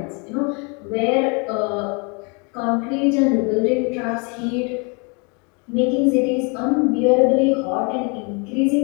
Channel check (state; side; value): quieter; right; 33.3 dB